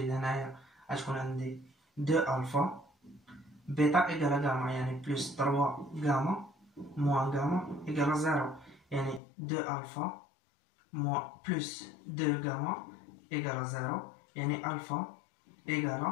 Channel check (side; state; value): right; drops out; at 9.2 s